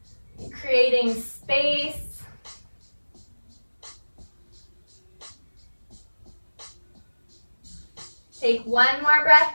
creating space. Take one more breath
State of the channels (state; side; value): inverted; both; correlation -1.00